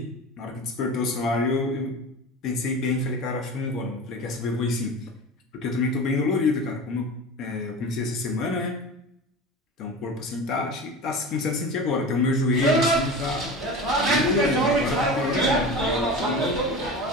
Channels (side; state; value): both; normal; correlation 0.31